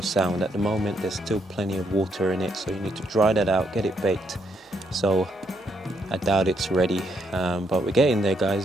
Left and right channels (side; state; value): both; normal; correlation 0.76